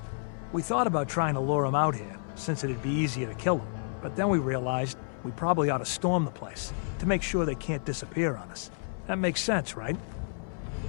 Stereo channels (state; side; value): silent; right; 58 dB below the other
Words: We thought about trying to lure him out here, since it'd be easier to kill him. But then we realized we probably ought to storm the place, to make sure they can't disappear on us. That makes sense, right?